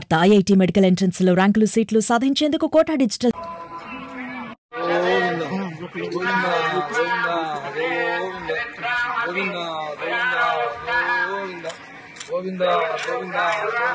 IIT medical entrance లో ర్యాంకులు సీట్లు సాధించేందుకు కోటా డిజిటల్ గోవిందా గోవిందా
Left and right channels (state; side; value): identical; both; correlation 1.00